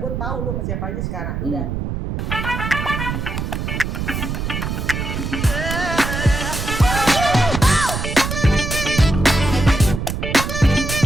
tahu lu sama siapa aja sekarang. Udah.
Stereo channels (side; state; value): right; noise; rumble, 3 dB below the sound